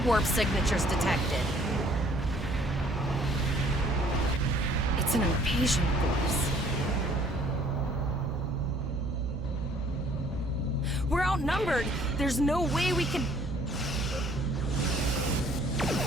warp signatures detected. It's an invasion force. We're outnumbered. There's no way we can...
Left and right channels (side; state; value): both; normal; correlation 0.58